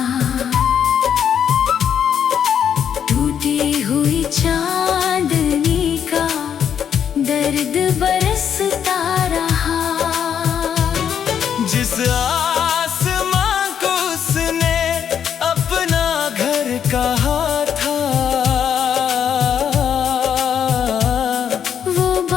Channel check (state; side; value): quieter; right; 8.5 dB